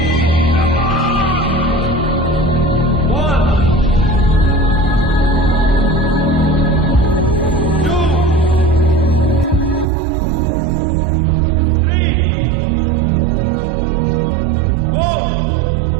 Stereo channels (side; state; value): left; drops out; at 9.9 s